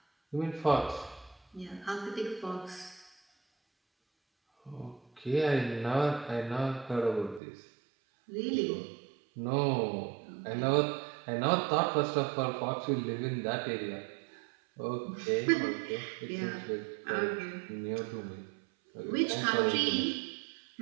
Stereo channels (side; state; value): left; drops out; at 7.4 s